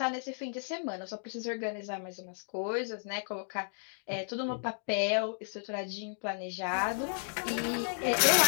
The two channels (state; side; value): silent; right; 56 dB below the other